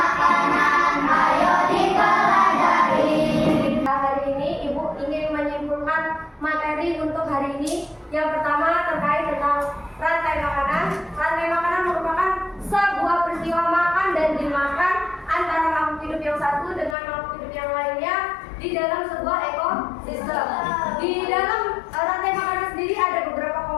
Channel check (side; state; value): right; drops out; at 16.9 s